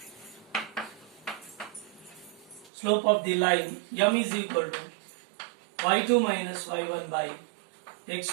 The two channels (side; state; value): left; drops out; at 2.7 s